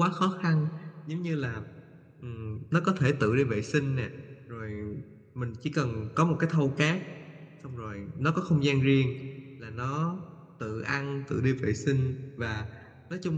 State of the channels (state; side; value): identical; both; correlation 1.00